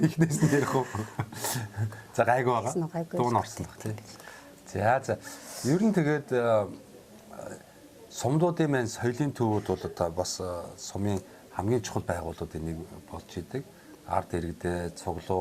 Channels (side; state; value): both; identical; correlation 1.00